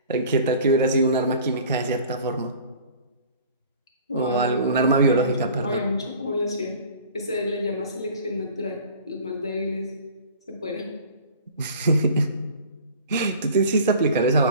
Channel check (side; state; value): both; inverted; correlation -0.45